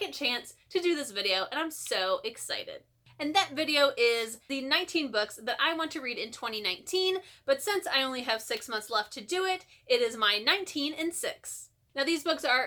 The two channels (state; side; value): identical; both; correlation 1.00